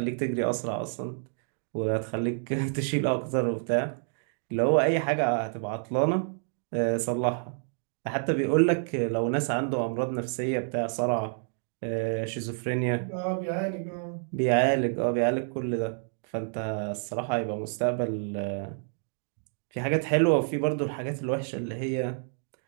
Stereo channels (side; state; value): left; silent; 59 dB below the other